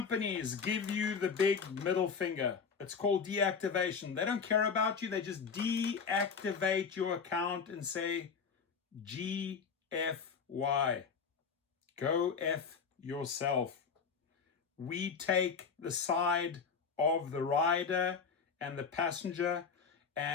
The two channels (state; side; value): quieter; right; 5.8 dB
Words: give you the big middle finger, it's called deactivation. They don't care about you. They just deactivate your account and say, GFY. Go F yourself. We take the side of the rider and the passenger,